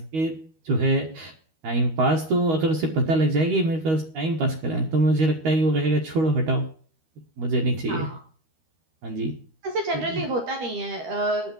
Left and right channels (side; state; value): left; late; 13 ms